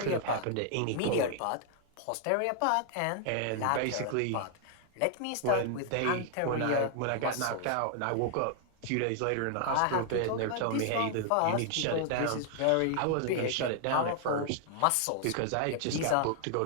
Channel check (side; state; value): both; different; correlation 0.00